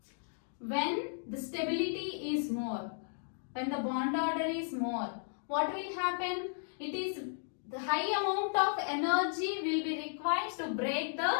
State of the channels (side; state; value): right; silent; digital silence